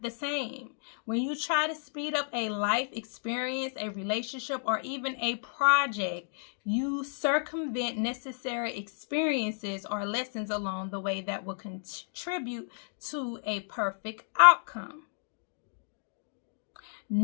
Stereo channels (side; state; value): right; silent; digital silence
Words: the same. When you try to speed up a life experience, a relationship, or even a project, you circumvent necessary experiences or lessons along the way that will contribute to a perfect outcome.